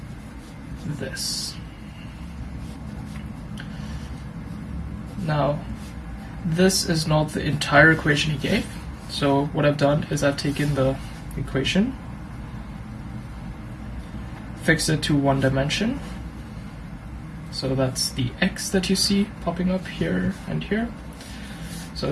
this. Now this is not the entire equation he gave, so what I've done is I've taken the equation, fixed it to one dimension, so that's the x that you see popping up here and here. So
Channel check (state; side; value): identical; both; correlation 1.00